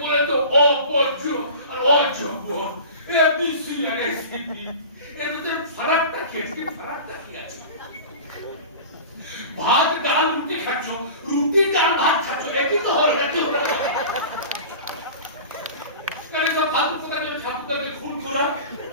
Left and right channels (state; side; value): inverted; both; correlation -0.36